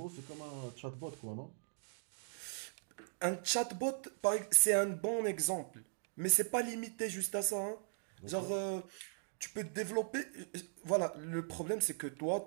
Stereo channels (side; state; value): left; silent; digital silence